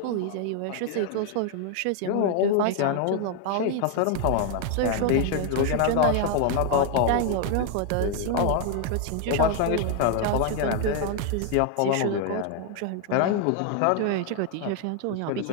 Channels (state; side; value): different; both; correlation 0.00